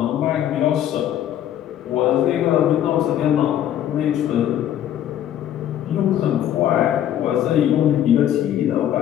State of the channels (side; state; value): right; quieter; 11.0 dB